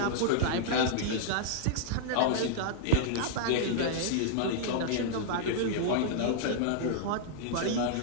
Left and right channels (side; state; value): both; different; correlation -0.01